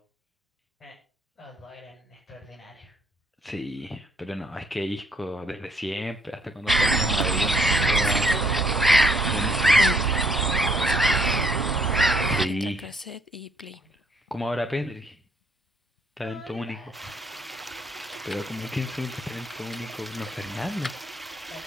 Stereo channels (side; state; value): both; normal; correlation 0.67